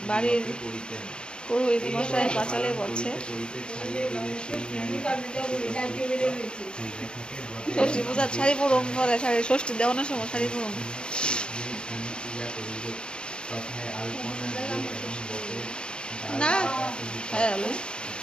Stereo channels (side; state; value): right; late; 0.051 ms